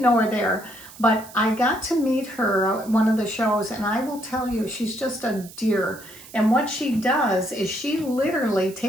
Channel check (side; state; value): right; noise; hiss, 19 dB below the sound